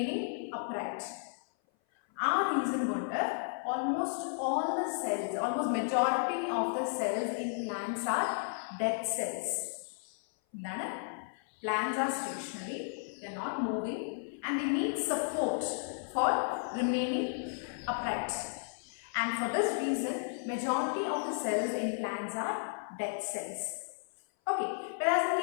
upright. Our reason wonder, almost all the cells, almost majority of the cells in plants are dead cells. Plants are stationary, they are not moving and they need support for remaining upright. And for this reason, majority of the cells in plants are dead cells. Okay, whereas in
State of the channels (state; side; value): silent; right; 55 dB below the other